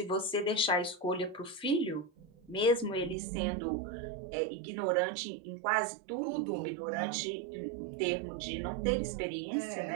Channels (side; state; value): left; drops out; at 3.2 s